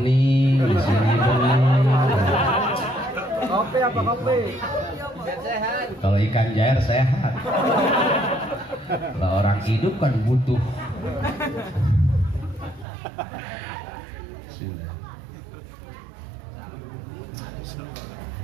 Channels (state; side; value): drops out; left; at 12.9 s